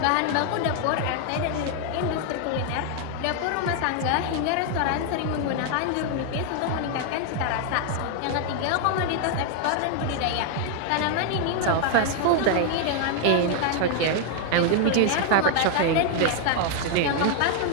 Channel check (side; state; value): both; different; correlation 0.00